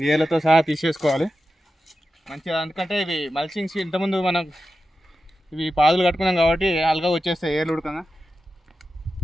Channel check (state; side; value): normal; both; correlation 0.92